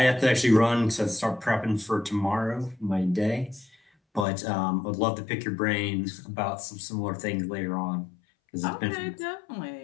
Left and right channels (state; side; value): drops out; right; at 4.2 s